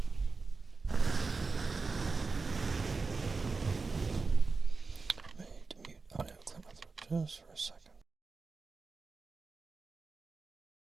Audio clear my throat just for a second.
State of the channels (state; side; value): quieter; left; 4.2 dB